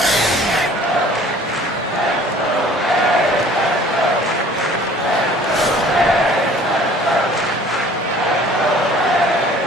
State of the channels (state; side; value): normal; both; correlation 0.51